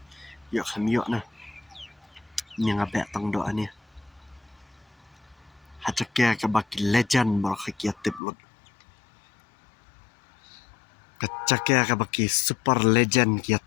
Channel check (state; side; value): drops out; right; at 8.2 s